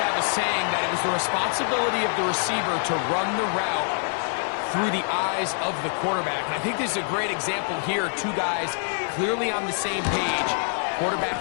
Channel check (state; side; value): silent; right; 62 dB below the other